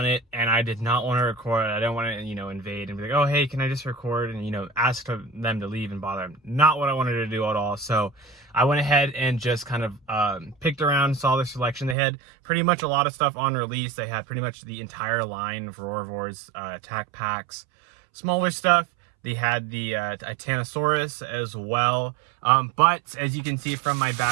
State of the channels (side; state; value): left; drops out; at 12.0 s